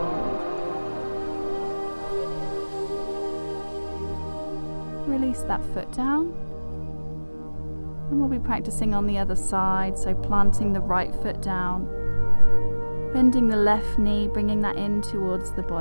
Release that foot down, and we'll be practicing on the other side, so planting the right foot down, bending the left knee, bringing that in towards the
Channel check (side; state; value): both; inverted; correlation -1.00